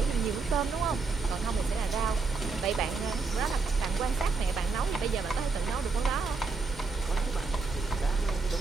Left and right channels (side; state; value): left; quieter; 4.2 dB